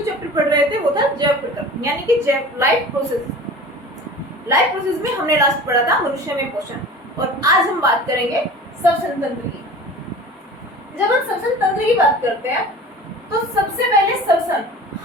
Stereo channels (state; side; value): normal; both; correlation 0.39